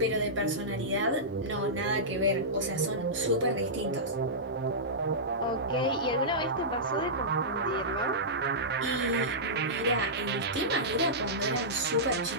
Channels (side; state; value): both; normal; correlation -0.15